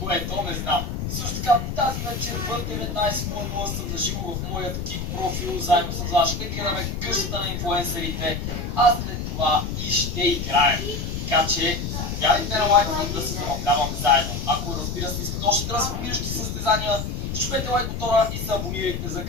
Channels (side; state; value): left; noise; rumble, 4 dB below the sound